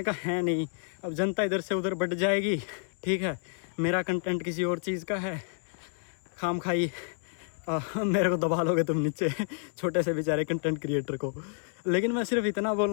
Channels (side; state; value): right; silent; 58 dB below the other